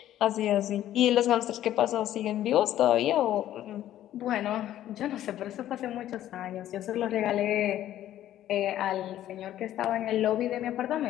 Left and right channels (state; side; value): quieter; right; 12.5 dB